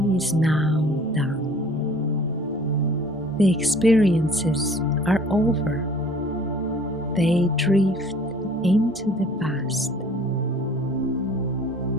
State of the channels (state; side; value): noise; right; hum, 28 dB below the sound